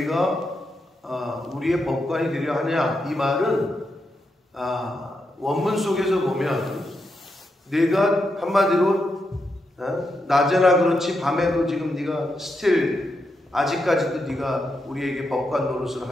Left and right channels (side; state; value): both; normal; correlation 0.84